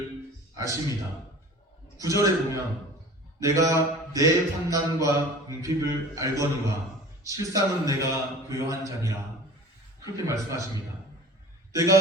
아십니다. 9절에 보면 내가 내 환난과 궁핍을 알거니와 실상은 내가 교요한 자니라, 그렇게 말씀하십니다.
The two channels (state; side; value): normal; both; correlation 0.41